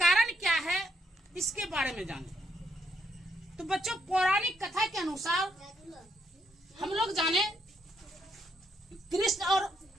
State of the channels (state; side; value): normal; both; correlation 0.75